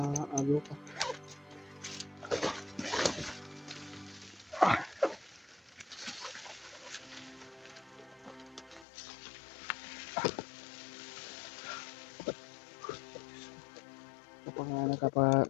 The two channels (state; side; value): drops out; right; at 8.8 s